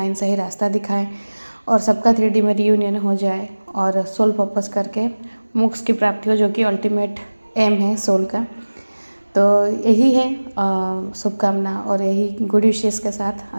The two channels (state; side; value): inverted; both; correlation -1.00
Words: सही रास्ता दिखाएं, और सबका 3D में रियूनियन हो जाए और सोल पर्पस करके मोक्ष की प्राप्ति हो, जो कि अल्टीमेट एम है सोल का। तो यही है शुभकामना और यही गुड विशेस के साथ